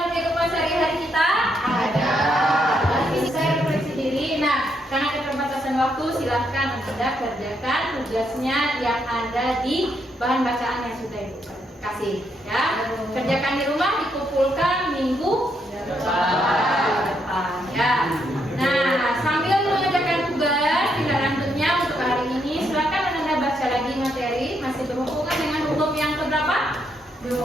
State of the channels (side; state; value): both; normal; correlation 0.77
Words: kehidupan sehari-hari kita? Ada. Saya refleksi diri. Nah, karena keterbatasan waktu, silahkan Anda kerjakan tugasnya yang ada di bahan bacaan yang sudah Ibu kasih. Ya, kerjakan di rumah, dikumpulkan minggu depan. Ya. Nah, sambil mengerjakan tugas tinggal lanjutnya untuk hari ini, silahkan Anda baca lagi materi masih berhubungan dengan hukum yang keberapa?